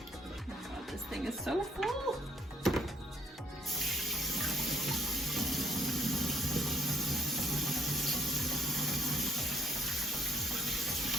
This thing is so full.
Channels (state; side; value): normal; both; correlation 0.68